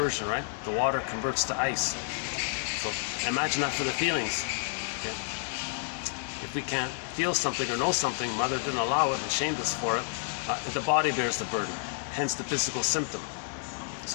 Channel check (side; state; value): right; silent; digital silence